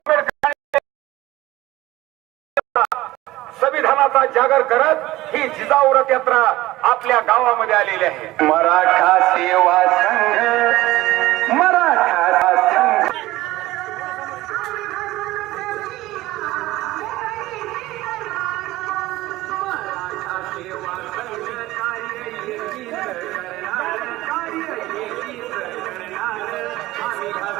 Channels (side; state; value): left; quieter; 17.4 dB